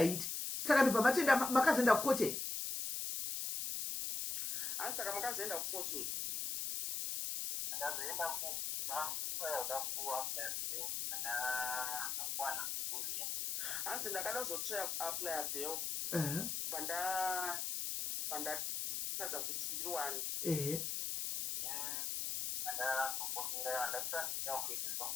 saka ndobva matenda makazoenda kukoche hanzi saka makazoenda kukoche hanzi ndakada kuzotry apply bail pandatadza kuti ndiriwani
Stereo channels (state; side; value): noise; left; hiss, 2 dB below the sound